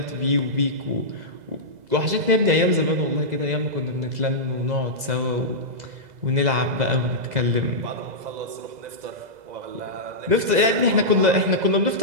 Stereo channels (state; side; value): late; left; 2.0 ms